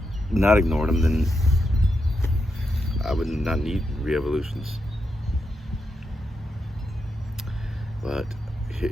not ignored them, then I would not need Re-Evolutionz. But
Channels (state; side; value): normal; both; correlation 0.84